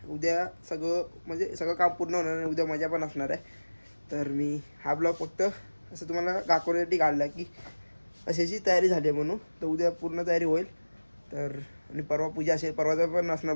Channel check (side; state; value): both; inverted; correlation -1.00